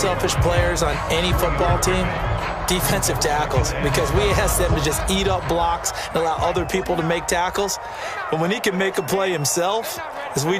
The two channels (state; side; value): identical; both; correlation 1.00